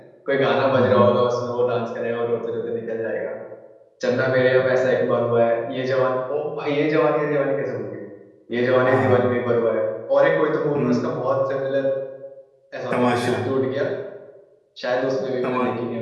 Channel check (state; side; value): identical; both; correlation 1.00